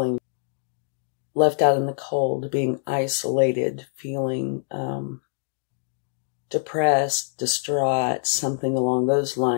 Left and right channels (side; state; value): right; silent; digital silence